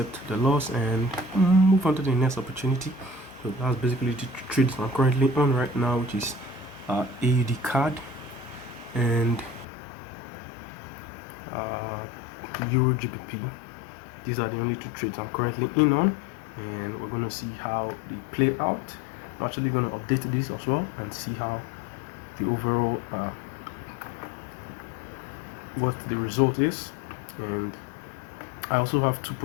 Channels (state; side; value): drops out; right; at 9.7 s